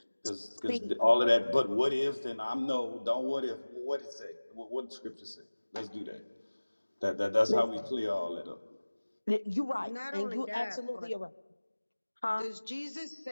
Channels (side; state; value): both; inverted; correlation -1.00